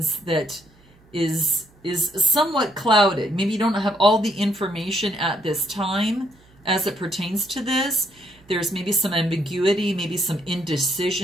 that is somewhat clouded. Maybe you don't have all the information at this time as it pertains to this. There's maybe some ambiguity, maybe some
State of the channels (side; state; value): right; noise; hum, 29 dB below the sound